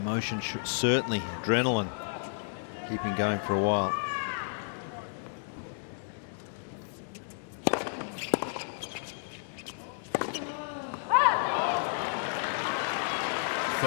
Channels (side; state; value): right; silent; 57 dB below the other